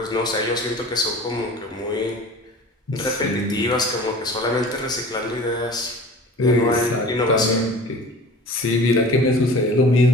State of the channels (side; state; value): both; normal; correlation 0.41